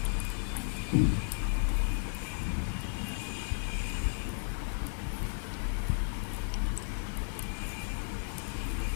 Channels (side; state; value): right; silent; digital silence